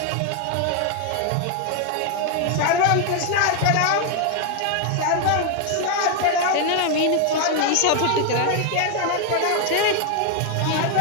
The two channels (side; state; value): both; different; correlation 0.00